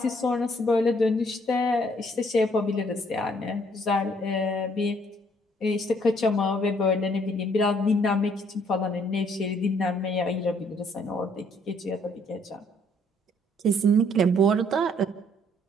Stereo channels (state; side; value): normal; both; correlation 0.65